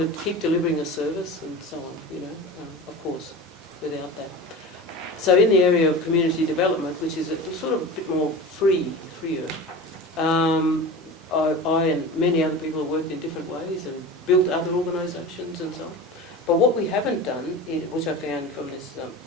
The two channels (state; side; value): normal; both; correlation 0.32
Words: to keep delivering a service and so on, of course, without that. So in the area of community development, which is sort of a bit more freer, I and many other people have worked in different ways and built other organisations and so on. But what we haven't done, which I found from this